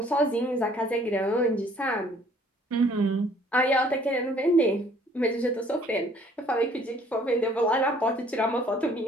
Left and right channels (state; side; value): normal; both; correlation 0.58